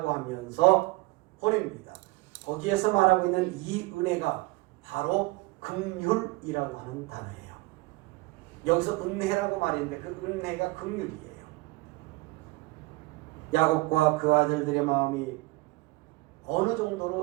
하면서 보냅니다. 거기에서 말하고 있는 이 은혜가 바로 긍휼이라고 하는 단어예요. 여기서 은혜라고 말했는데 그 은혜가 긍휼이에요. 야곱과 그 아들들의 마음이 어느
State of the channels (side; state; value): left; quieter; 22.1 dB